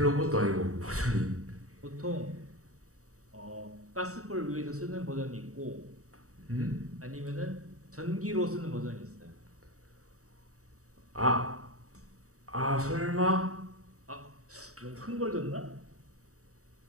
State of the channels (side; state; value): left; late; 0.65 ms